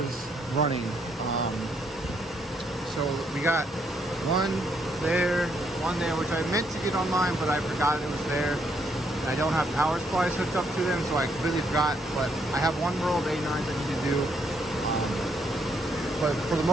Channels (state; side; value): normal; both; correlation 0.73